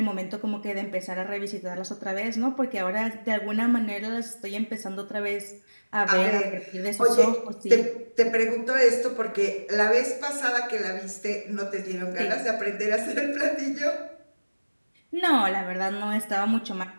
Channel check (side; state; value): both; inverted; correlation -1.00